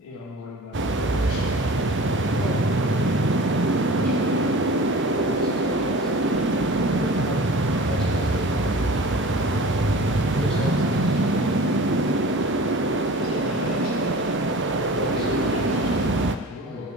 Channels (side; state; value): both; normal; correlation 0.39